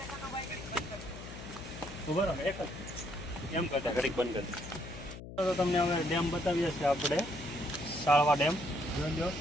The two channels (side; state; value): left; noise; hum, 12 dB below the sound